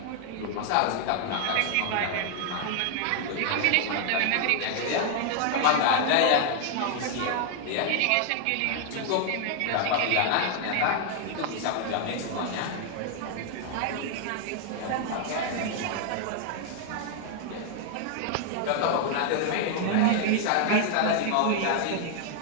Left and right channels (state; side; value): different; both; correlation 0.00